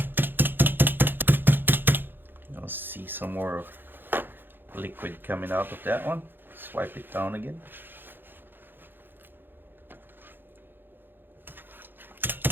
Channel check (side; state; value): left; late; 0.097 ms